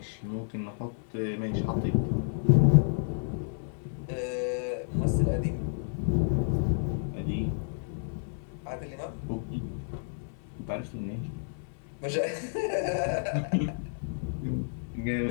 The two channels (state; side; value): silent; right; 57 dB below the other